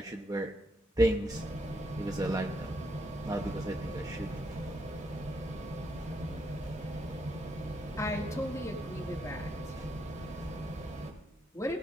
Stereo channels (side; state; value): both; normal; correlation 0.78